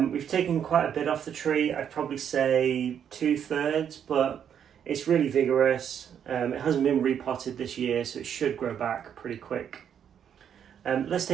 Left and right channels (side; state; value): left; quieter; 8.6 dB